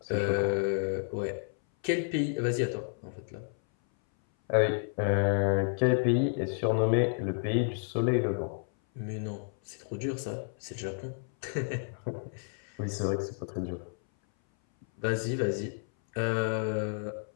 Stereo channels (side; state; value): right; silent; 57 dB below the other